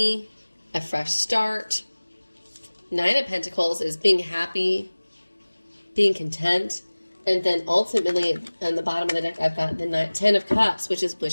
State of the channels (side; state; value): both; inverted; correlation -1.00